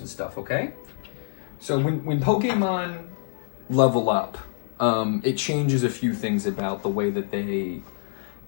stuff, okay? So when Pokemon level up, it changes a few things about the way that they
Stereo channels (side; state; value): right; silent; digital silence